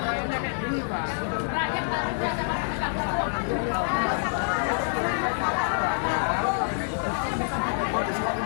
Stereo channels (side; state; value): right; silent; 60 dB below the other